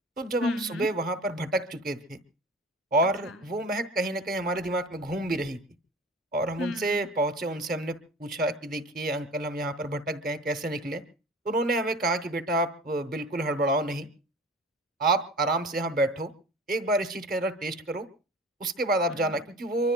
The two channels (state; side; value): normal; both; correlation 0.38